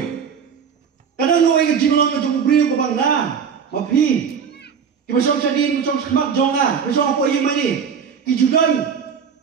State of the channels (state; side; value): quieter; left; 6.8 dB